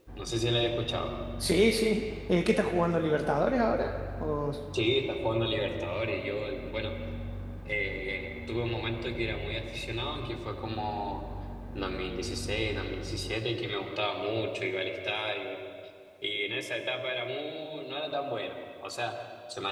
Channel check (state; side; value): identical; both; correlation 1.00